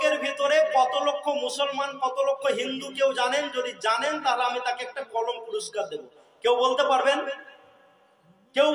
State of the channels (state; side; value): identical; both; correlation 1.00